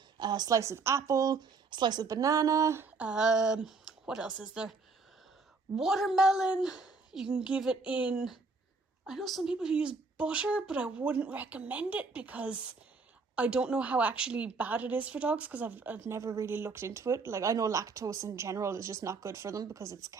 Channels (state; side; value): quieter; left; 4.2 dB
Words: a slice of apple, a slice of banana, what else is there? Watermelon. You can give it in, I know some people who use butter, but I wouldn't recommend it because I don't know how actually bad it is for dogs, because I've never really looked into it. Like, I know lactose in general is just not good for them because it's